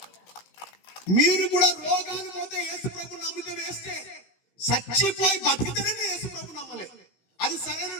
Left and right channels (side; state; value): right; late; 16 ms